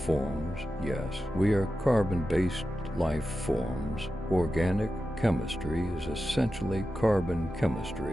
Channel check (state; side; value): normal; both; correlation 0.92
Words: Yes, we are carbon-based life forms. Organic chemistry is essentially carbon